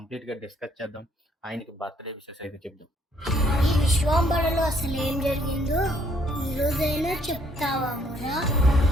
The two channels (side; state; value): both; normal; correlation 0.66